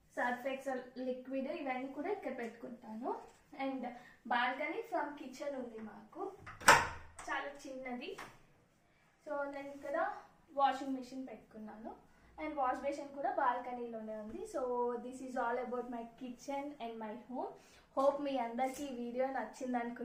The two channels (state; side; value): identical; both; correlation 1.00